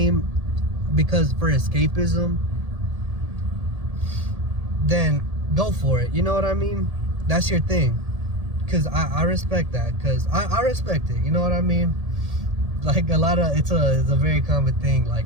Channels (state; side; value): late; left; 1.7 ms